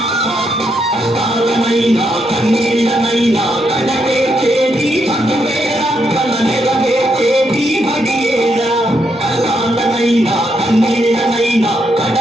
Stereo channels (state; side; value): normal; both; correlation 0.79